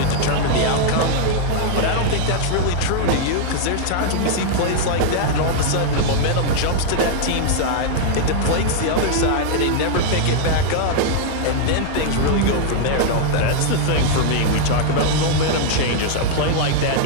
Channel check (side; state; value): both; different; correlation -0.01